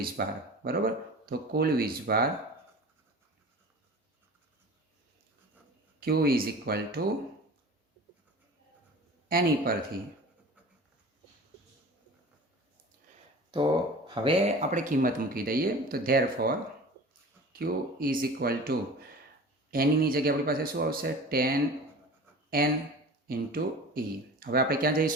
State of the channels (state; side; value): normal; both; correlation 0.39